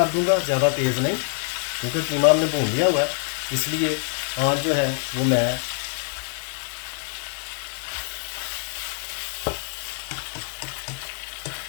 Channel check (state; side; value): silent; right; 58 dB below the other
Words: दूंगा, ज़्यादा तेज़ नहीं, क्योंकि कीमा हमने भून लिया हुआ है, इसलिए आँच जो है वो मैं